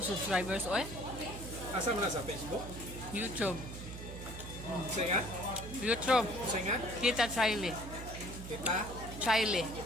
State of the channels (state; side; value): noise; right; hum, 10 dB below the sound